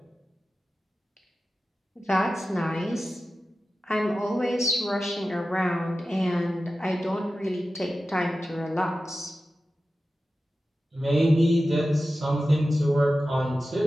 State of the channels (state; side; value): normal; both; correlation 0.94